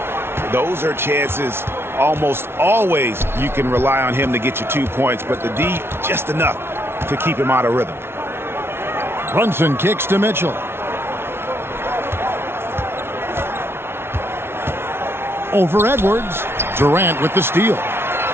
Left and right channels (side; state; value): left; late; 0.12 ms